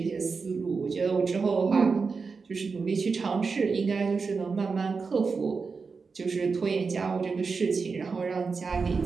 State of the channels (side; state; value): left; quieter; 4.8 dB